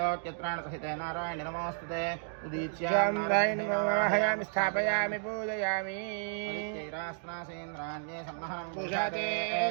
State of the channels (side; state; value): left; silent; digital silence